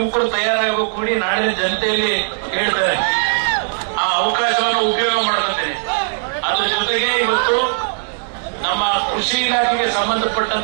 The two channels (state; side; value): silent; left; 67 dB below the other